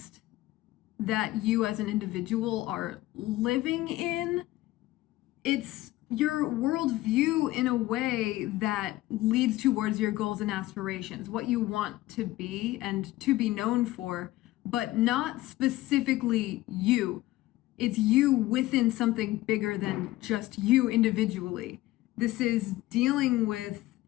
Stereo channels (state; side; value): quieter; right; 17.0 dB